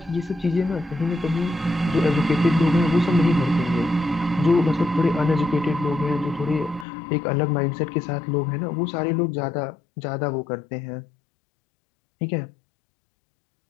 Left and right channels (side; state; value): right; drops out; at 6.9 s